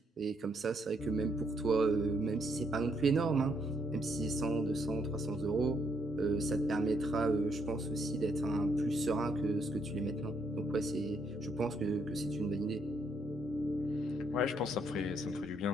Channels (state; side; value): normal; both; correlation 0.73